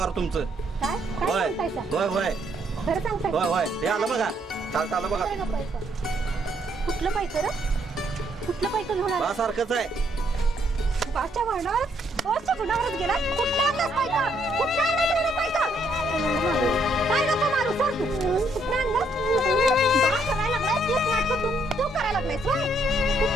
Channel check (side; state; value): both; normal; correlation 0.71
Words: तुमचं. काय काय होय सांगतायसा? होय होय खरं सांगताय? होय होय हे आलं बघा. चालतं आलं बघा. कुठलं पैक रे? कुठलं पैक घेऊन आला? बा सारखंच आहे. बाच्या गुणावरच गेला. कुठला आणलास पैका? कुठला आणलास एवढा पैका? काय नको मारू सर तू. कुठला आणलास? बा करायला लागलाय तेच नाटक तू करायला लागलायस होय.